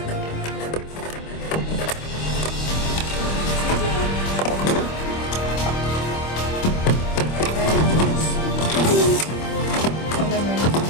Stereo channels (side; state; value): right; late; 26 ms